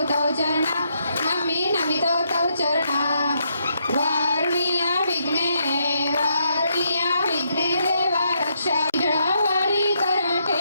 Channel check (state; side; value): inverted; both; correlation -0.77